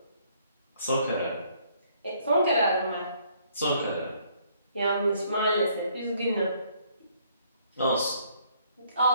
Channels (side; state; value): both; inverted; correlation -0.65